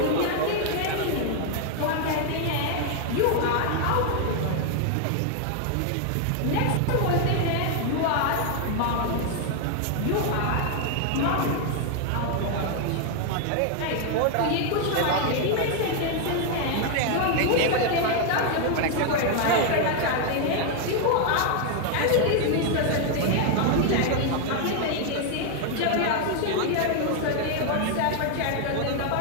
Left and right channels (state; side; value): different; both; correlation 0.00